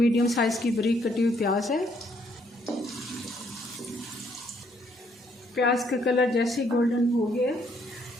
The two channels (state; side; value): normal; both; correlation 0.69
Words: साइज़ की बारीक कटी हुई प्याज है। प्याज का कलर जैसे गोल्डन हो गया,